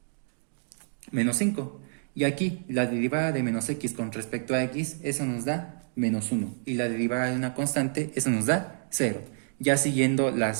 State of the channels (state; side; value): silent; left; digital silence